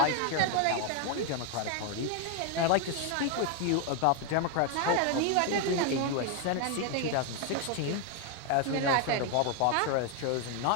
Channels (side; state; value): both; different; correlation 0.01